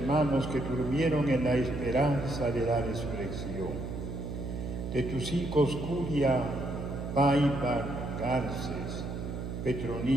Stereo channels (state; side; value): noise; right; hum, 6 dB below the sound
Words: que durmieron en la esperanza de la resurrección. De tus hijos Curia, Paiva Garces,